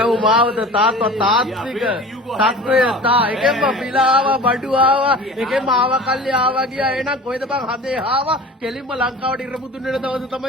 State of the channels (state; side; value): normal; both; correlation 0.39